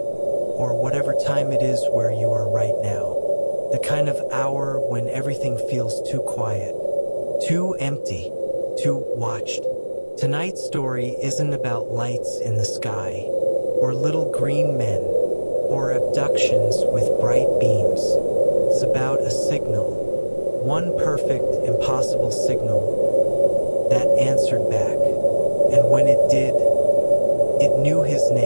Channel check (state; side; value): inverted; both; correlation -1.00